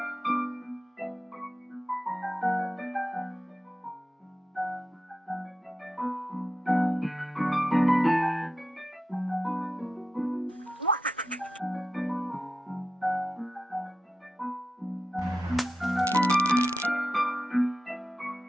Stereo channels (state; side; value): normal; both; correlation 0.90